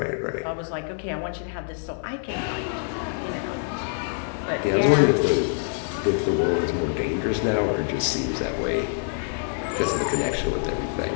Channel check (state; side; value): silent; right; 60 dB below the other